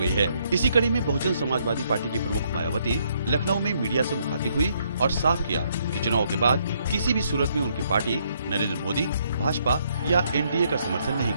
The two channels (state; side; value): inverted; both; correlation -0.71